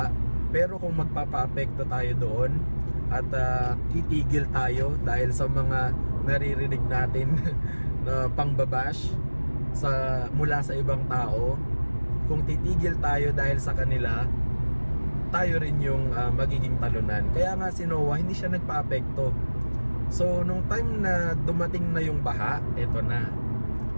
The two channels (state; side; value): inverted; both; correlation -1.00